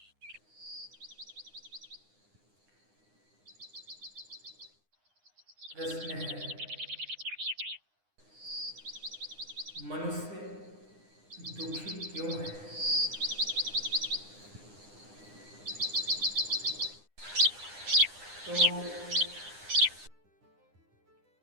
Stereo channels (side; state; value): left; late; 9.8 ms